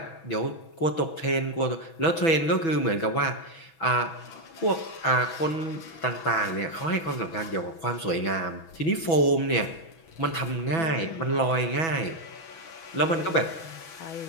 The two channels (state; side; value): late; right; 6.1 ms